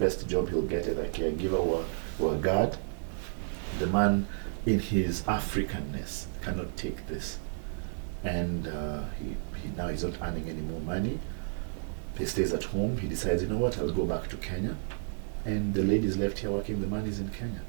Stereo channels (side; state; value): left; silent; digital silence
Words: job he'll get as a caregiver or a guard? The man in his Africanness, cannot take this. And he's not earning any more money. He stays at home. He decides, you know what, I'll go back to Kenya. And the ladies left here working, the money's in Kenya.